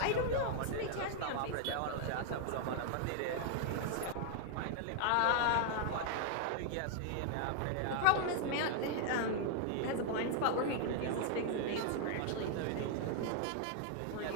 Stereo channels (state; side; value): different; both; correlation 0.00